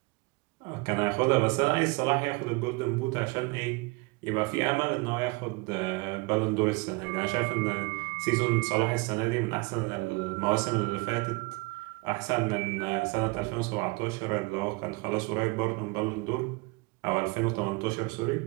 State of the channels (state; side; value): quieter; left; 26.3 dB